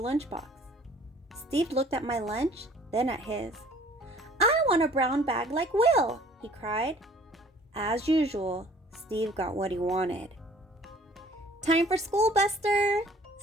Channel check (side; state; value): both; normal; correlation 0.53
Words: lunchbox. Steve looked at my lunch, then at his. "I want a brown bag like Will," he cried. As usual, Steve got what he wanted. "Time for school, Buster,"